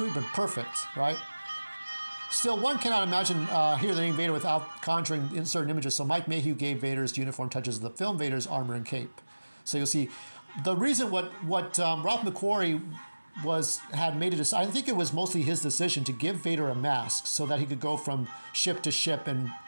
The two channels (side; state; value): both; inverted; correlation -1.00